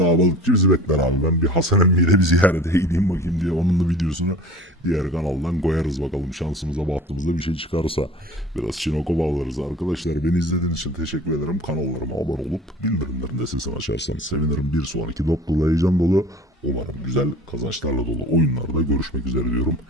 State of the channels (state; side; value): normal; both; correlation 0.42